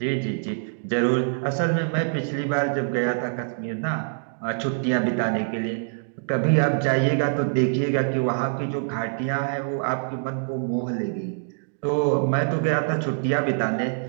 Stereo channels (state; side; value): silent; left; digital silence